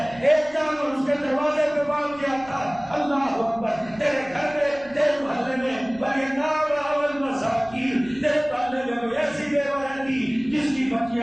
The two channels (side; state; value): right; noise; rumble, 23 dB below the sound